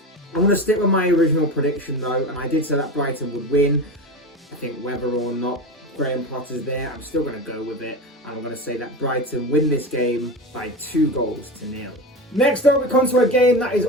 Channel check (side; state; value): both; normal; correlation 0.24